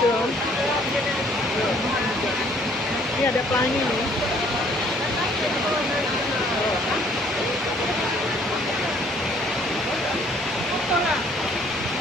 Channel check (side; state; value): both; normal; correlation 0.61